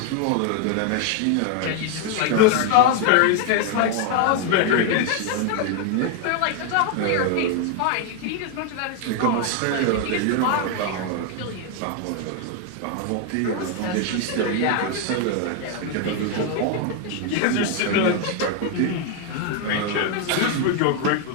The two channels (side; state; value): both; different; correlation 0.01